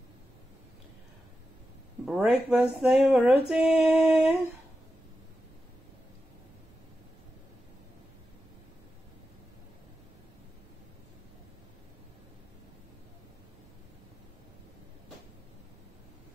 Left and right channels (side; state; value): both; normal; correlation 0.91